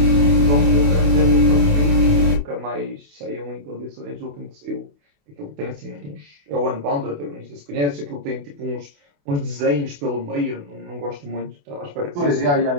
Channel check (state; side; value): late; left; 28 ms